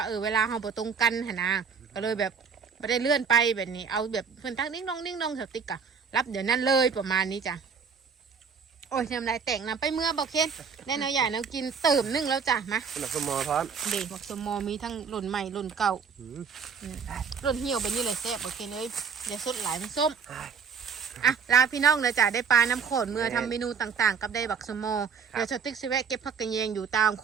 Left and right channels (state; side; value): quieter; left; 6.2 dB